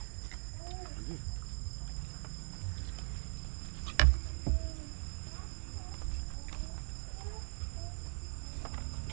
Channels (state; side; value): silent; left; 51 dB below the other